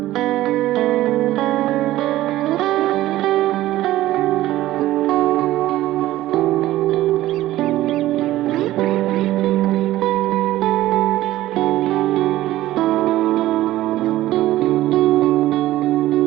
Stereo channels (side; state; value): left; quieter; 15.4 dB